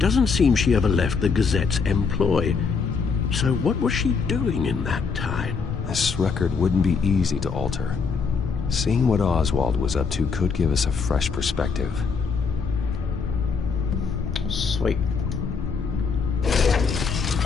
seem she ever left the Gazette's employ. So what was she doing in that time? This record wouldn't be easy to alter. Seeing what Oswald was up to could give us a fresh perspective. Sweet.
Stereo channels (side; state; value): right; quieter; 5.3 dB